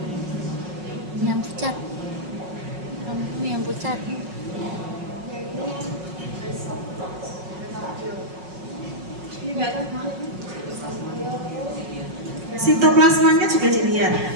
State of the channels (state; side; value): late; left; 5.5 ms